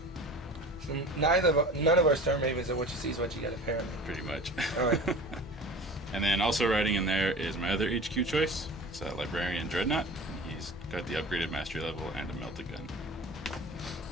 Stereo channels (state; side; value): normal; both; correlation 0.38